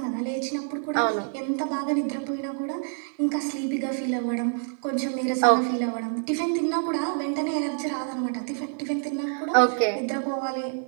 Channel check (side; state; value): left; silent; 60 dB below the other